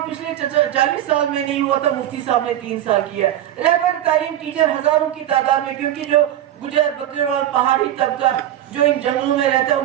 पिछले 40 साल में नहीं हुआ था, मुफ्ती साहब ने 3 साल किया। रहबर तालीम टीचर हजारों की तादाद में, क्योंकि जो गुजर बकरवाल पहाड़ी तबका जो इन जंगलों में रहता है,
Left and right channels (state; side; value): quieter; left; 12.1 dB